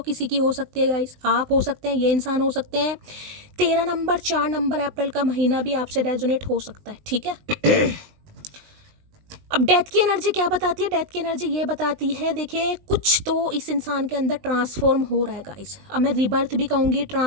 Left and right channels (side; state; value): left; late; 20 ms